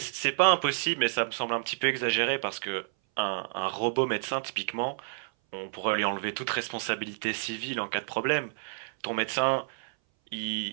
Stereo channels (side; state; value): left; silent; 58 dB below the other